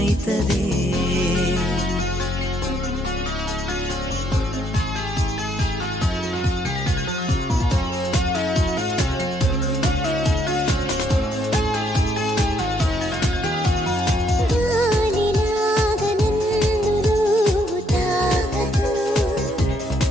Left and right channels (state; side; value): normal; both; correlation 0.70